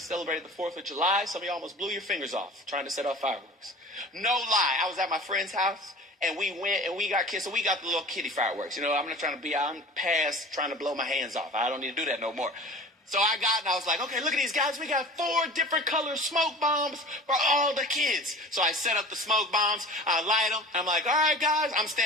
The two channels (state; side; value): normal; both; correlation 0.40